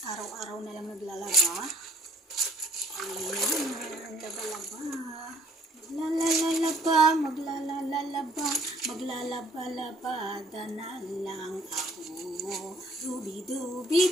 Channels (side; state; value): both; normal; correlation 0.58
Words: Araw-araw na lang naglalaba. Ayan, laba-laba. Maglalalaba. Maglalaba-labada na lang ako.